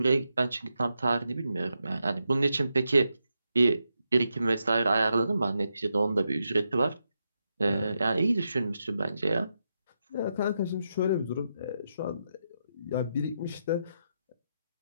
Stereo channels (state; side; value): inverted; both; correlation -0.85